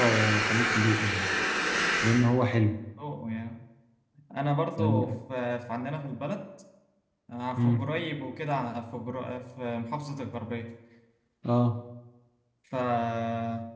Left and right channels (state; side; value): identical; both; correlation 1.00